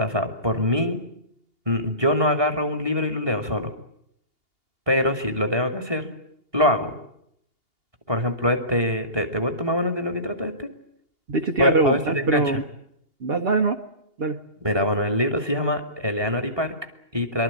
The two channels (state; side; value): late; left; 2.8 ms